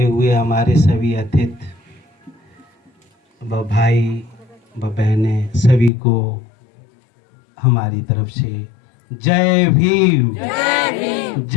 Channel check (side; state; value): right; drops out; at 5.9 s